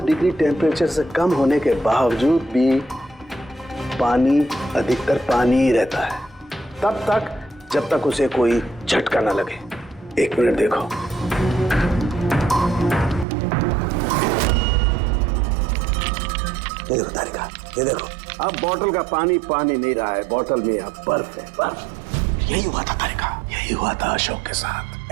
डिग्री टेम्परेचर से कम होने के बावजूद भी पानी अधिकतर पानी ही रहता है, तब तक जब तक उसे कोई झटका ना लगे। 1 मिनट देखो, ये देखो तारिका, ये देखो, अब बोतल का पानी पानी नहीं रहा है, बोतल में अब बर्फ है, बर्फ। यही हुआ था तारिका, यही हुआ था अशोक के साथ।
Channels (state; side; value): drops out; left; at 13.2 s